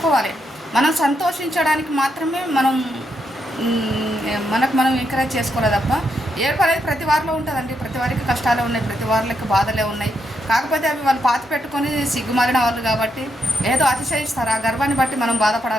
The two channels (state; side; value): normal; both; correlation 0.80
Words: మనం సంతోషించడానికి మాత్రమే మనకు మనం ఎంకరేజ్ చేసుకోవాలి తప్ప ఏడుపు అనేది ప్రతి వారిలో ఉంటుందండి. ప్రతి వారికి కష్టాలే ఉన్నాయి, ప్రతి వారికి బాధలే ఉన్నాయి. కాకపోతే అవి వాళ్ళు పాతి పెట్టుకొని సిగ్గుమారిన వాళ్ళు కాబట్టి ఏదో అతిశయిస్తారు. ఆ గర్వాన్ని బట్టి మనం